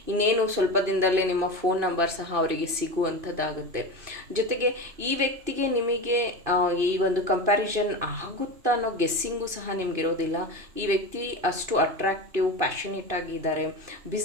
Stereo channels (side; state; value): left; late; 2.6 ms